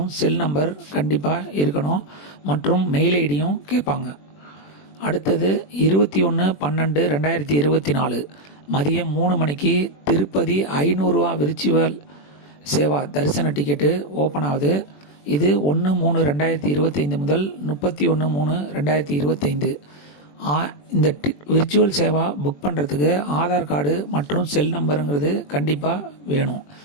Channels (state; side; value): late; right; 21 ms